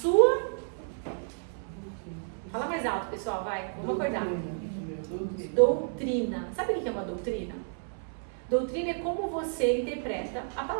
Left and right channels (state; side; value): silent; left; 57 dB below the other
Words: Fala mais alto, pessoal, vai. Vamos acordar. Doutrina. Sabe o que é uma doutrina? Doutrina é como você interpreta a